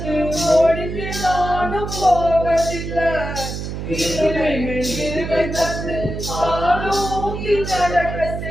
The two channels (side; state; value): right; noise; hum, 6 dB below the sound